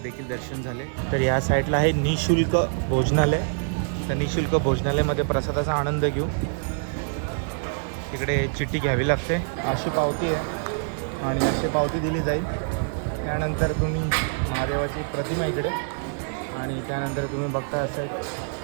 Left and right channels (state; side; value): silent; left; digital silence